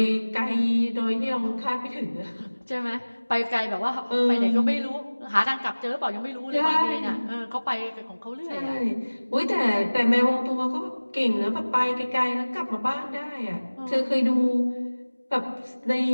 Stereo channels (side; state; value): both; inverted; correlation -1.00